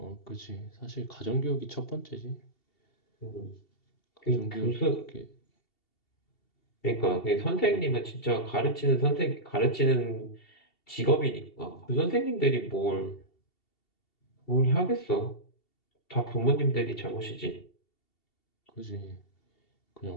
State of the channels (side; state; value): right; late; 2.7 ms